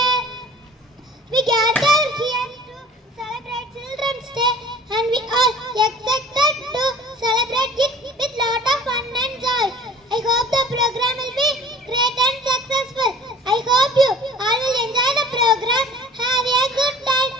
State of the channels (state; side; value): normal; both; correlation 0.47